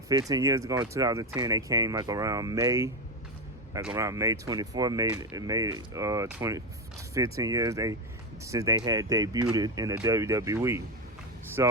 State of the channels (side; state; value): both; normal; correlation 0.13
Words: years ago in 2010, they came like around May 24, made 15 years since they had debuted in the WWE.